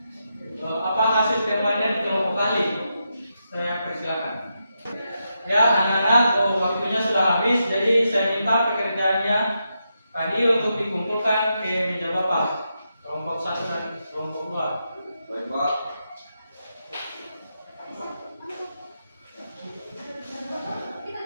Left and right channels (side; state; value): both; inverted; correlation -0.85